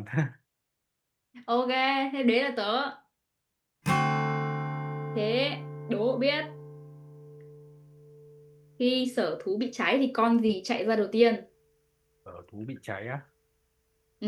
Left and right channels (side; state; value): both; identical; correlation 1.00